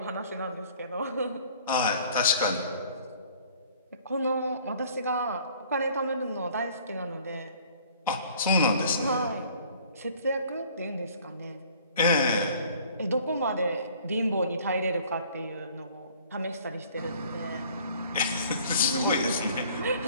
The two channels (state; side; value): inverted; both; correlation -0.54